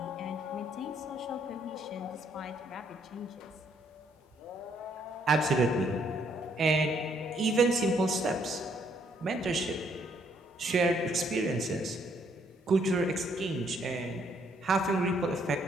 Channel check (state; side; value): normal; both; correlation 0.69